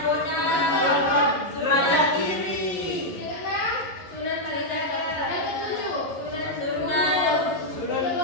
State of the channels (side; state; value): right; late; 11 ms